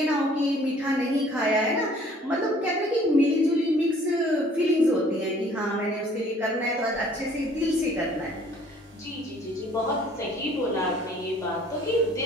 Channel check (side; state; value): both; normal; correlation 0.56